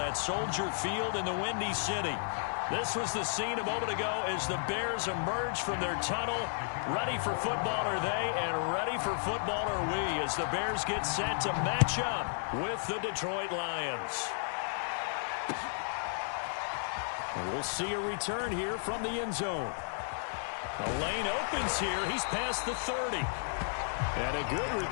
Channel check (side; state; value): right; silent; 56 dB below the other